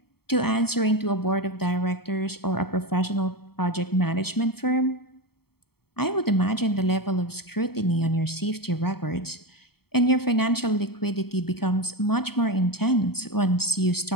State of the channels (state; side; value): late; right; 0.95 ms